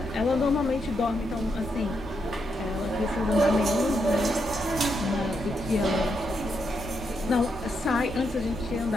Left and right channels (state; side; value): normal; both; correlation 0.81